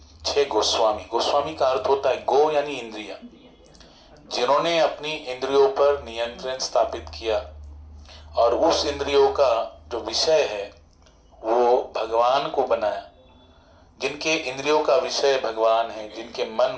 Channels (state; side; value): identical; both; correlation 1.00